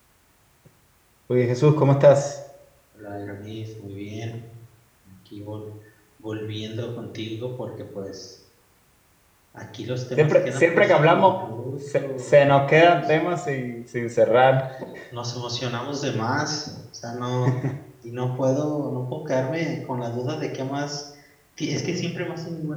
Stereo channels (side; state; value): both; identical; correlation 1.00